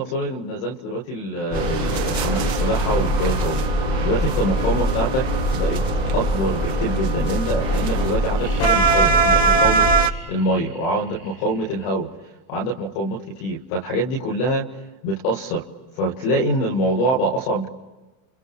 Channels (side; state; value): right; late; 31 ms